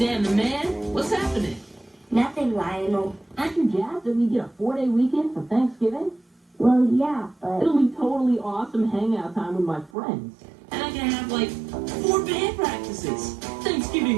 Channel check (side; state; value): left; drops out; at 9.9 s